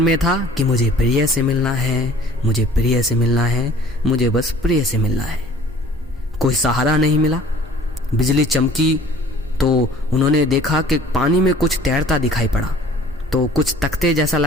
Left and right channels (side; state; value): both; normal; correlation 0.51